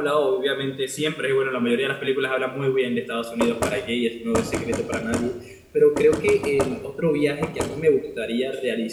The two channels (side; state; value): both; identical; correlation 1.00